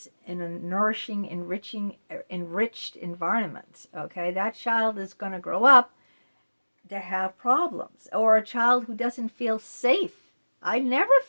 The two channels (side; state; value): both; inverted; correlation -1.00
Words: in a nourishing, enriched environment, okay? That child is going to grow up to have problems. Or a child who doesn't feel safe. I never